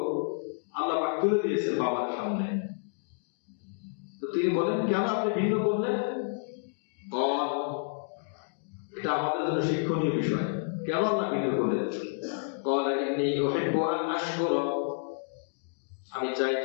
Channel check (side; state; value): right; silent; digital silence